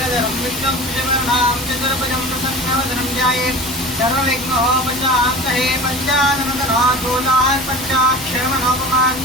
విష్ణుం శివనాం చతుర్భుజం ప్రసన్నవదనం ధ్యాయేత్ సర్వవిఘ్నోపశాంతయే పంచాననదనాథోదాన్ పంచాక్షరమనోపమాన్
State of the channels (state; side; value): normal; both; correlation 0.36